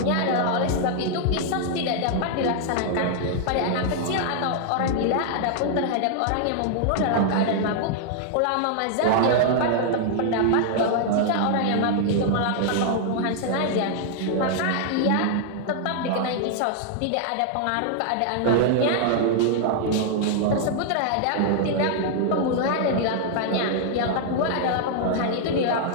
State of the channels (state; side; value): different; both; correlation -0.01